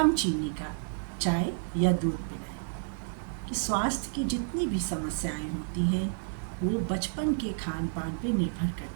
चीनी का चाय या दूध पिलाएं। कि स्वास्थ्य की जितनी भी समस्याएं होती हैं वो बचपन के खान पान पे निर्भर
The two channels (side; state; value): left; silent; digital silence